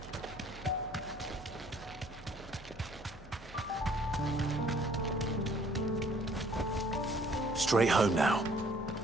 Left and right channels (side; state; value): both; normal; correlation 0.59